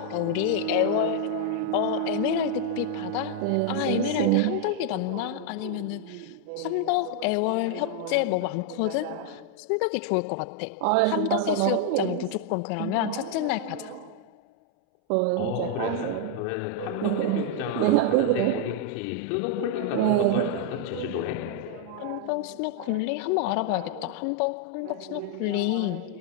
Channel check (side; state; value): both; different; correlation 0.00